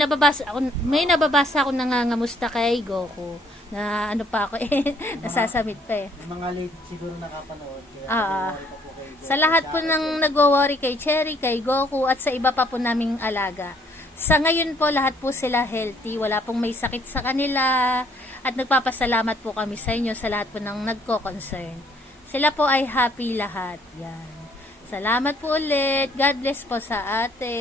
nababasa ako nangangamusta kay Goku. Na ano pa ako eh. Nasasamit pa eh. Yung mga late siguro nakapanood. Kaya nag-worry pa po kay Goku. Sa lahat po ng nagwo-worry kay Cherry, kay Goku, at sa iba pa po naming alaga. Sa ngayon po, lahat po sila healthy. Wala pong may sakit sa kanila. At nagpapasalamat po kami sa inyo sa lahat po ng nagko-concern. Sila po ay happy lahat. Yan. Salamat po ulit. God bless po sa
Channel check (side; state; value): both; normal; correlation 0.64